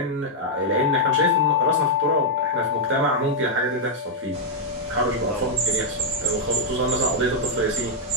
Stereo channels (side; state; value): both; normal; correlation -0.03